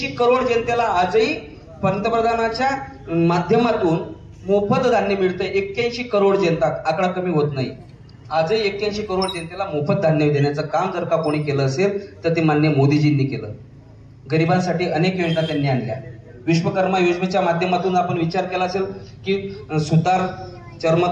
करोड जनतेला आजही पंतप्रधानाच्या माध्यमातून मोफत धान्य मिळतंय। 81 करोड जनता, आकडा कमी होत नाही। आजही 81 करोड जनतेला मोफत धान्य देण्याचं काम जर का कोणी केलं असेल तर ते माननीय मोदीजींनी केलं। गरिबांसाठी अनेक योजना त्यांनी आणल्या। विश्वकर्मा योजनेच्या माध्यमातून आपण विचार केला असेल की सुतार,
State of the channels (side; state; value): both; identical; correlation 1.00